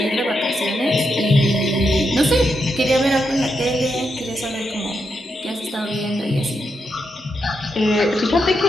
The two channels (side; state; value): both; normal; correlation 0.83